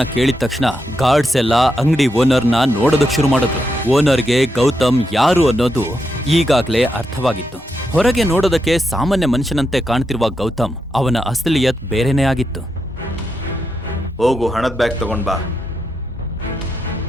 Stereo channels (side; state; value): both; normal; correlation 0.84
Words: ಕೇಳಿದ ತಕ್ಷಣ ಗಾರ್ಡ್ಸ್ ಎಲ್ಲ ಅಂಗಡಿ ಓನರ್ನ ನೋಡೋದಕ್ ಶುರು ಮಾಡಿದ್ರು. ಓನರ್ಗೆ ಗೌತಮ್ ಯಾರು ಅನ್ನೋದು ಈಗಾಗ್ಲೇ ಅರ್ಥವಾಗಿತ್ತು. ಹೊರಗೆ ನೋಡೋದಕ್ಕೆ ಸಾಮಾನ್ಯ ಮನುಷ್ಯನಂತೆ ಕಾಣ್ತಿರುವ ಗೌತಮ್ ಅವನ ಅಸಲಿಯತ್ ಬೇರೆನೇ ಆಗಿತ್ತು. ಹೋಗು, ಹಣದ ಬ್ಯಾಗ್ ತಗೊಂಡ್ ಬಾ.